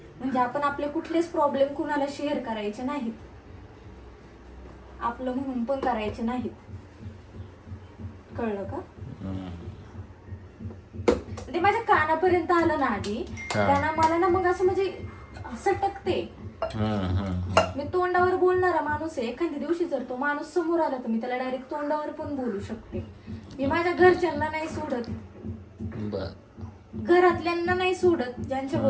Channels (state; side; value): identical; both; correlation 1.00